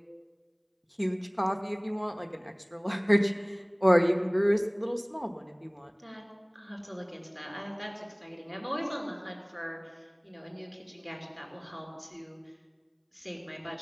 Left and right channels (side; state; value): both; identical; correlation 1.00